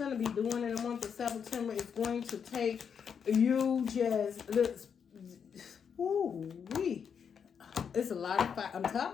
to be doing in the month of September is going to take you it's a lot of fire. I'm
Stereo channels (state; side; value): quieter; right; 7.1 dB